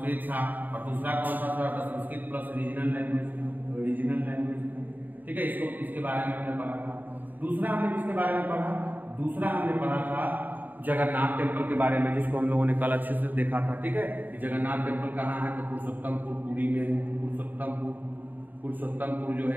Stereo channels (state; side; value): late; left; 0.087 ms